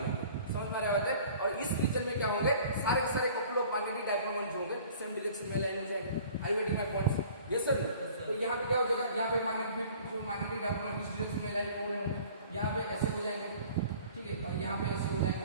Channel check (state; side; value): inverted; both; correlation -0.49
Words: लेंगे। समझ में आ रहा है? और इस रीजन में क्या होंगे, सारे के सारे couple of magnetic dipole moment जो होंगे सेम डायरेक्शन में अलाइन हो जाएंगे। आई waiting my points? Yes sir. तो यहाँ पे क्या हो जाएगा, यहाँ पे मैग्नेटिक डाइपोल मोमेंट इस डायरेक्शन में अलाइन हो रहे होंगे, यहाँ पे ऐसे हो जाएंगे। ठीक है, और यहाँ पे ऐसे हो